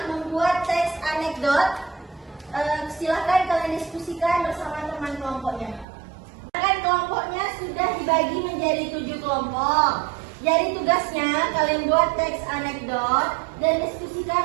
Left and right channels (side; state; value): left; drops out; at 5.9 s